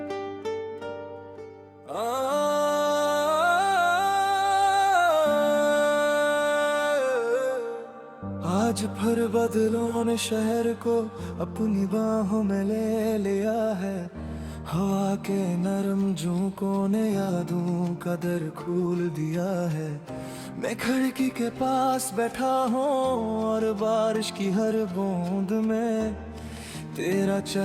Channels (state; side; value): identical; both; correlation 1.00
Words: आज फिर बदलों ने शहर को अपनी बाहों में ले लिया है हवा के नरम झोंकों ने यादों का दर खोल दिया है मैं खिड़की के पास बैठा हूँ और बारिश की हर बूंद में तेरा